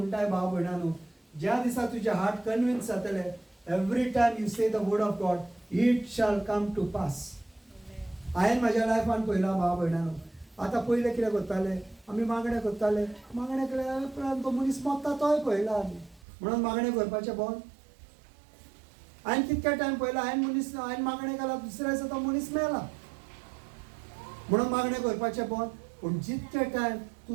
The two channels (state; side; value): drops out; left; at 16.2 s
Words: भाव भयणानो ज्या दिसा तुजें हार्ट कन्विन्स जातलें every time you say the word of God it shall come to pass. हांवें म्हाज्या लायफान पळयलां भाव भयणानो. आतां पयलें कितें करताले आमी मागणें केल्या उपरांत तो मनीस मरता तोय पळयला आमी म्हणून मागणें करपाचें बंद. हांवें कितके टायम पळयला हांवें मागणें केला दुसऱ्या दिसा तो मनीस मेला म्हणून मागणें करपाचें बंद. पूण जितके टायम तूं